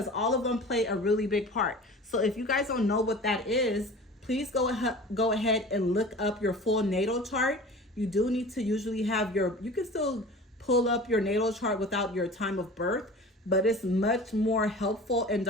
all of them play a really big part. So if you guys don't know what that is, please go ahead and look up your full natal chart. You do need to usually have you can still pull up your natal chart without your time of birth, but it's much more helpful and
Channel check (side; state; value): both; normal; correlation 0.39